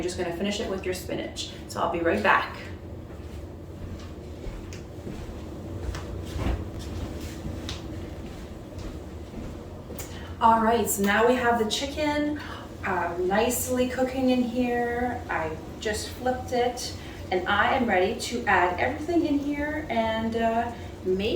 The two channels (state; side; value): identical; both; correlation 1.00